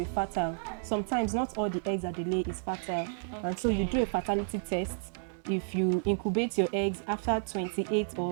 fertile. Sometimes not all the eggs that they lay is fertile. And so you do a fertility test. If you incubate your eggs after 28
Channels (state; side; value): silent; left; 57 dB below the other